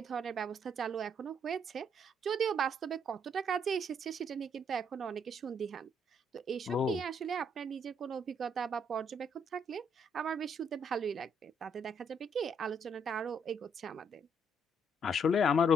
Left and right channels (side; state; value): both; normal; correlation 0.71